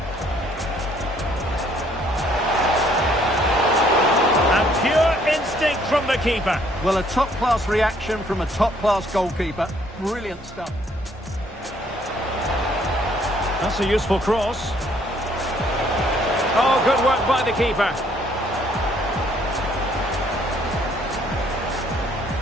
And pure instinct from the keeper. Well, a top-class reaction from a top-class goalkeeper. Brilliant stuff. That's a useful cross. Oh, good work by the keeper.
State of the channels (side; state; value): both; normal; correlation 0.64